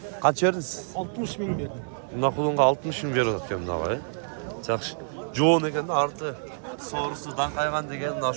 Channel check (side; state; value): left; silent; digital silence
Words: qancha verdingiz? 60 bin bir. Buna kulunga 60 bin berip atkan bunaqa. Yaxshi. Jo'on ekan da arti so'risidan qaygan degan